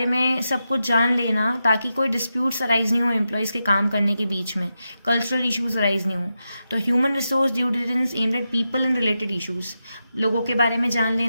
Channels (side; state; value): both; inverted; correlation -0.88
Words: में सब कुछ जान लेना ताकि कोई डिस्प्यूट्स अराइज नहीं हो एम्प्लॉयज़ के काम करने के बीच में, कल्चरल इशूज़ अराइज नहीं हो. तो human resource due diligence aimed at people and related issues, लोगों के बारे में जान